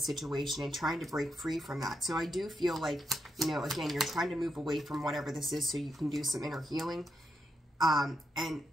and trying to break free from that. So I do feel like, you know, again, you're trying to move away from whatever this is so you can do some inner healing. And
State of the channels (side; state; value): both; normal; correlation 0.83